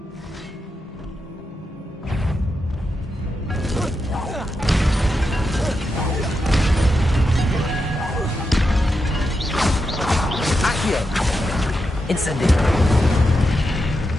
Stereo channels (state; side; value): normal; both; correlation 0.87